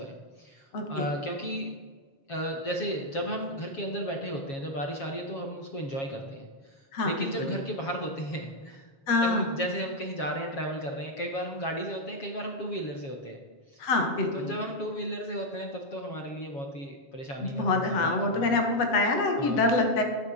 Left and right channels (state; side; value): late; right; 7.3 ms